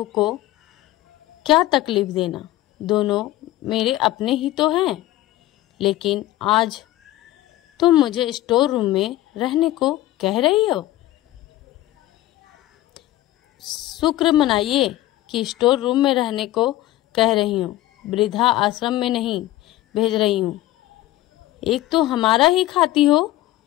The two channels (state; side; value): quieter; right; 15.6 dB